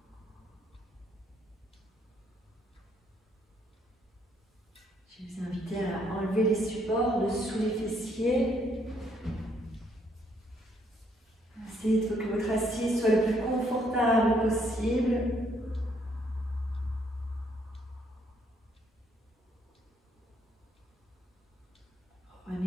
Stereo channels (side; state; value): both; normal; correlation 0.70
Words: Je vais vous inviter à enlever les supports de sous les fessiers. Essayez que votre assise soit le plus confortable possible.